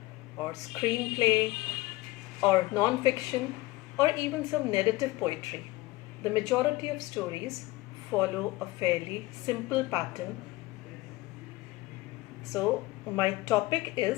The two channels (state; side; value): quieter; right; 19.4 dB